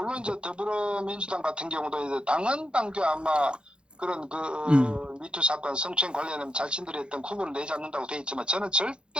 이제 더불어민주당 같은 경우도 이제 당헌 당규 아마 그런 그 미투 사건 성추행 관련된 자신들이 했던 구분을 내지 않는다고 돼 있지만 저는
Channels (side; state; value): left; late; 0.053 ms